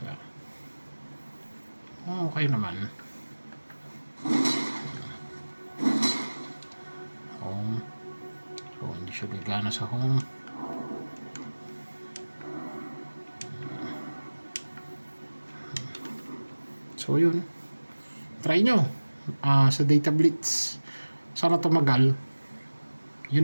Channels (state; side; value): inverted; both; correlation -1.00